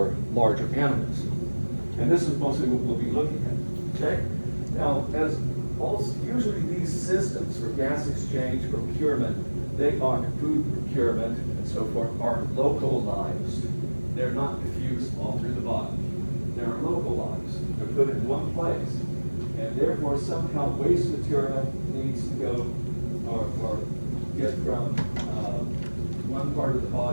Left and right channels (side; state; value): both; inverted; correlation -1.00